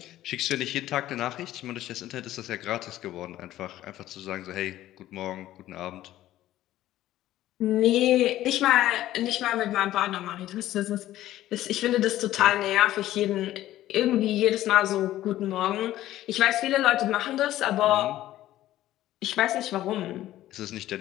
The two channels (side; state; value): right; quieter; 14.1 dB